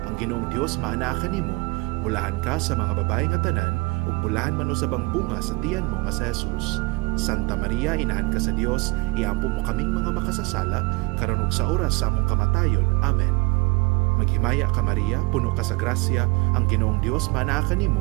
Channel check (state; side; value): quieter; left; 25.5 dB